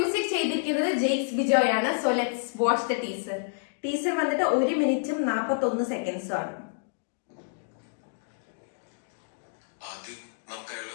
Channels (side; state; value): right; silent; digital silence